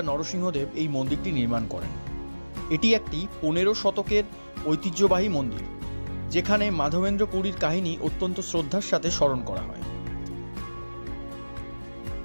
নরসিংহদেব এই মন্দিরটি নির্মাণ করেন। এটি একটি 15 শতকের ঐতিহ্যবাহী মন্দির, যেখানে মাধবেন্দ্র পুরীর কাহিনী অত্যন্ত শ্রদ্ধার সাথে স্মরণ করা হয়।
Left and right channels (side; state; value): both; inverted; correlation -1.00